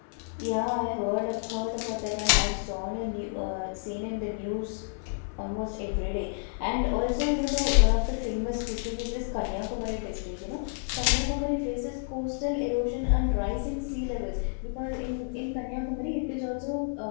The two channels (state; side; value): silent; right; 58 dB below the other